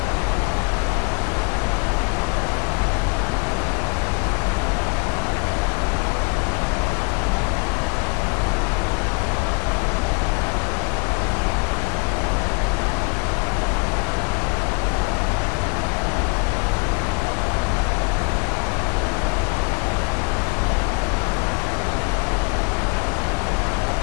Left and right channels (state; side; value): quieter; right; 34.6 dB